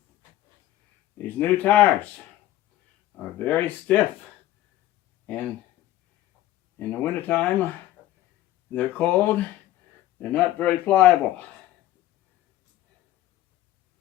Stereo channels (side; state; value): right; quieter; 14.3 dB